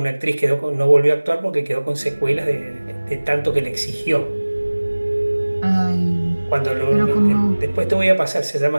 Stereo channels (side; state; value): both; inverted; correlation -1.00